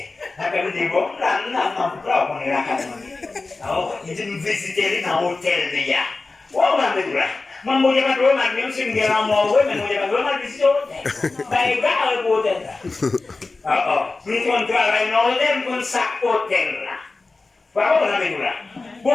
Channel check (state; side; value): quieter; right; 3.6 dB